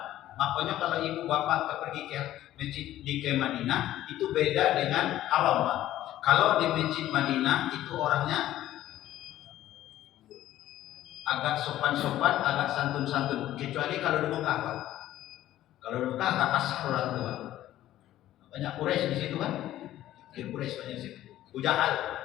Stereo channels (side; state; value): right; quieter; 13.6 dB